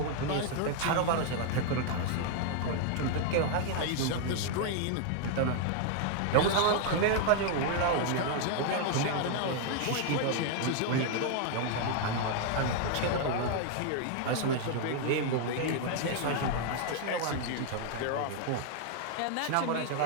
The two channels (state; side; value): different; both; correlation 0.00